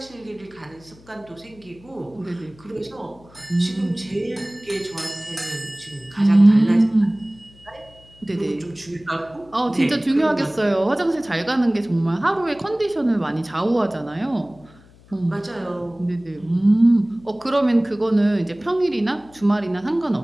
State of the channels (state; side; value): noise; left; hum, 25 dB below the sound